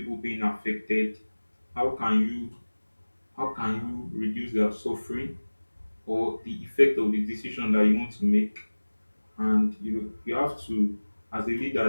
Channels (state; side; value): inverted; both; correlation -1.00